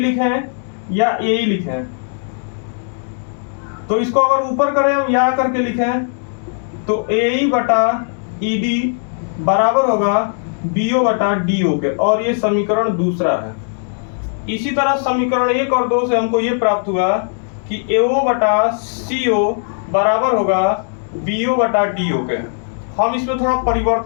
या ए ही लिखें? तो इसको अगर ऊपर करें हम या करके लिखें तो ए ई बटा ई डी बराबर होगा बीओ बटा डीओ के, और ये समीकरण दूसरा है। इसी तरह समीकरण 1 और 2 से हमको ये प्राप्त हुआ कि एओ बटा सीओ बराबर होगा बीओ बटा डीओ के। हम इसमें थोड़ा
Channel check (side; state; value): right; silent; 67 dB below the other